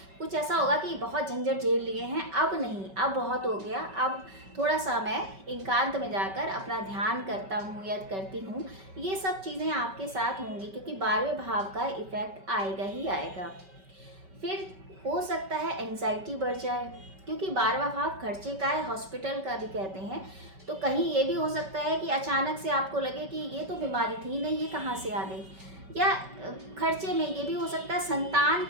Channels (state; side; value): late; left; 5.2 ms